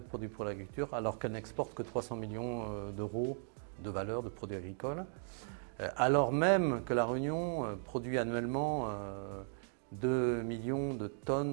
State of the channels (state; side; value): silent; left; digital silence